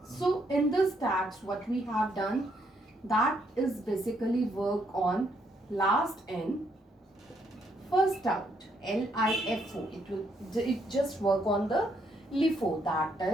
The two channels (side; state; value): both; normal; correlation 0.73